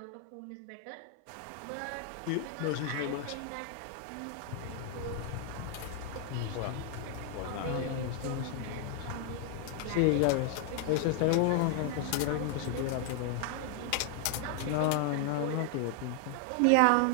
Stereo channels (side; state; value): both; different; correlation 0.00